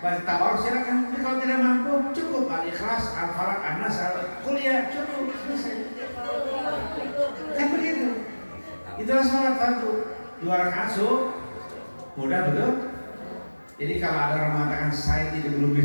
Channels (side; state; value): both; inverted; correlation -1.00